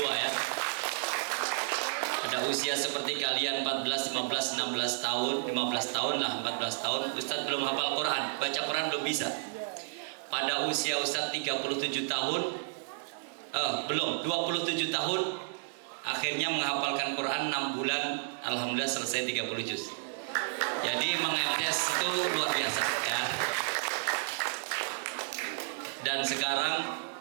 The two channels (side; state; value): left; silent; digital silence